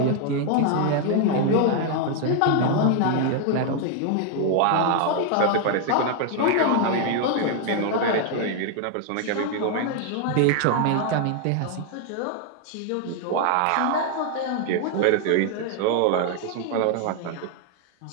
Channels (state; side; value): different; both; correlation 0.00